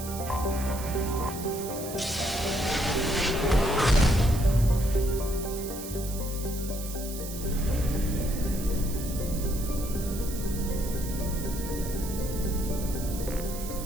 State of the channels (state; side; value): noise; right; hiss, 10 dB below the sound